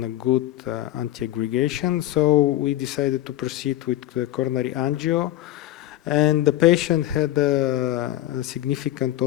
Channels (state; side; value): quieter; right; 14.3 dB